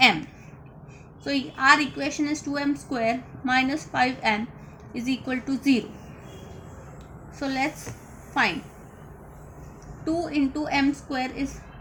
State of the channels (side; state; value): both; identical; correlation 1.00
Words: So our equation is 2m square minus 5m is equal to 0. So let's find 2 into m square is